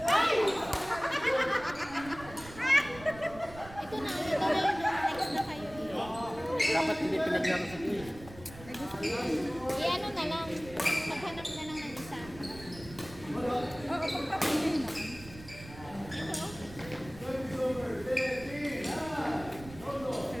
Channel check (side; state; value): right; noise; rumble, 17 dB below the sound